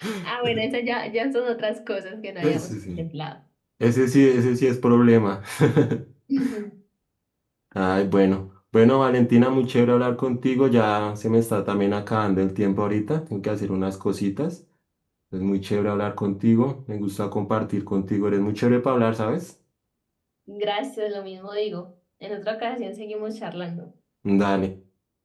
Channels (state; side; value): identical; both; correlation 1.00